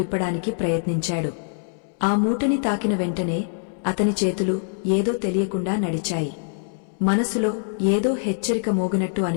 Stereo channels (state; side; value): silent; right; 63 dB below the other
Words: ప్రయత్నించాడు. ఆ మూటని తాకిన వెంటనే అతని చేతులు ఏదో తెలియకుండా నడిచాయి. మనసులో ఏదో హెచ్చరిక మోగినట్టు